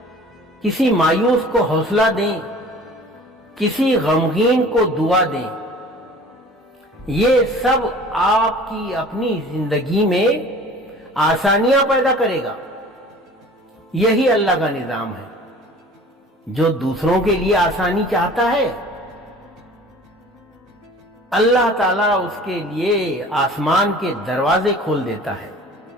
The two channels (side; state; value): both; normal; correlation 0.45